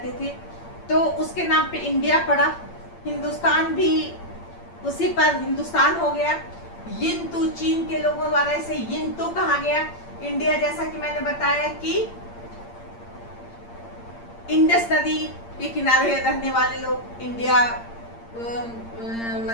थे, तो उसके नाम पे इंडिया पड़ा। हिंदुस्तान भी उसी पर हिंदुस्तान हो गया। यिंतु चीन के लोगों द्वारा इसे यिंतु कहा गया। इंडिया जैसा कि मैंने बताया कि इंडस नदी के किनारे रहने वाले लोग इंडिया,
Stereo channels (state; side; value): late; right; 8.7 ms